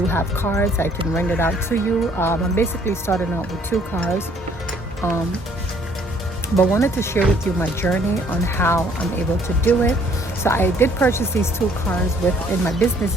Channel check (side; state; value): both; normal; correlation 0.61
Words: have cars. I can rent it out to you. I'm basically starting out with 2 cars, but wanted to share with you my journey on how I'm able to do it. So I did purchase these 2 cars in my business